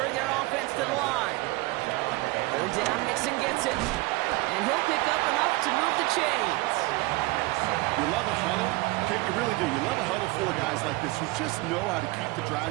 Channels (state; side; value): quieter; left; 22.3 dB